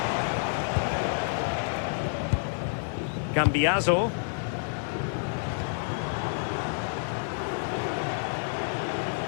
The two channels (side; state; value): right; silent; digital silence